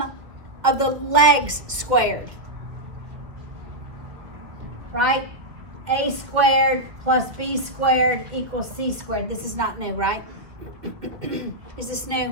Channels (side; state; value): left; late; 2.1 ms